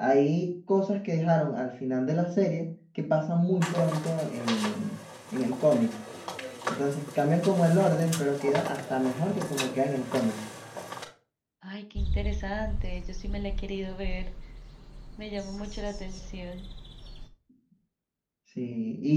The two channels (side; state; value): both; identical; correlation 1.00